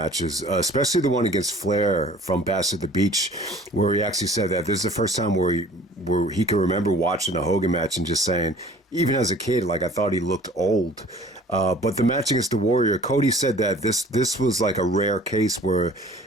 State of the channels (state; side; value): normal; both; correlation 0.50